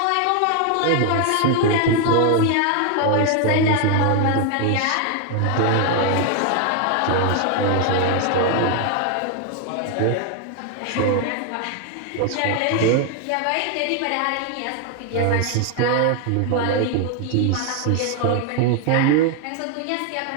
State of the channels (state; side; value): different; both; correlation 0.01